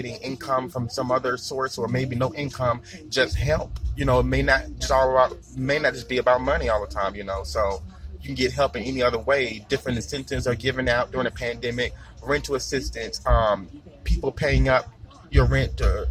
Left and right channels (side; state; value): both; identical; correlation 1.00